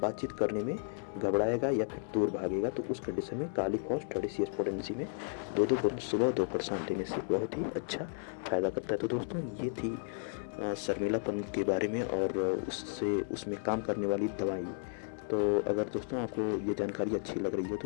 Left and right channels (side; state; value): right; silent; 55 dB below the other